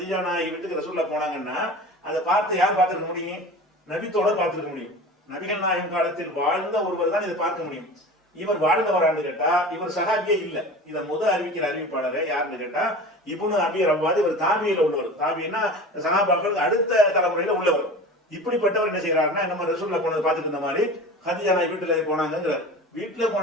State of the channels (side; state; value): both; normal; correlation 0.36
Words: நாயகி வீட்டுக்கு ரசூலுல்லாஹ் போனாங்கன்னா அதை பார்த்து யார் பார்த்திருக்க முடியும்? நபித்தோட பார்த்திருக்க முடியும். நபிகள் நாயகம் காலத்தில் வாழ்ந்த ஒருவர் தான் இதை பார்க்க முடியும். இவர் வாழ்ந்தவரான்னு கேட்டா இவர் சஹாபியே இல்ல. இதை அறிவிக்கிற அறிவிப்பாளர் யாருன்னு கேட்டா இப்னு அபி ரவ்வாத். இவர் தாபியில உள்ளவர். தாபின்னா சஹாபாக்களுக்கு அடுத்த தலைமுறையில உள்ளவர். இப்படிப்பட்டவர் என்ன செய்யறாருன்னா, நம்ம ரசூலுல்லாஹ் போனதை பார்த்துட்டு இருந்த மாதிரி ஹதீஜா நாயகி வீட்டுல போனாங்கிறார். வீட்டுல